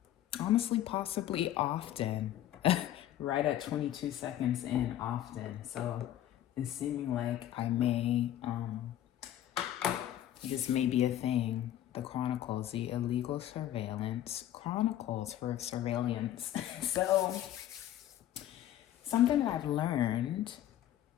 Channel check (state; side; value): quieter; right; 12.2 dB